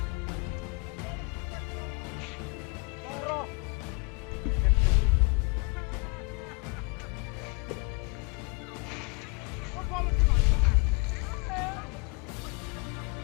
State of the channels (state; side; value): quieter; right; 30.1 dB